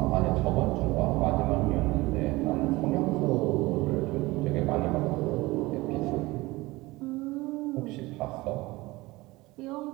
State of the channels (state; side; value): quieter; left; 21.0 dB